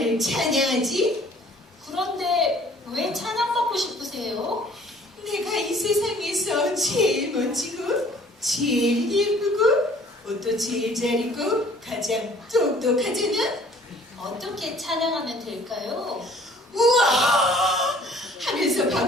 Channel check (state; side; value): normal; both; correlation 0.55